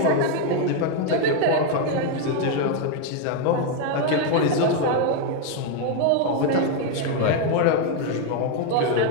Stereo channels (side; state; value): both; different; correlation 0.01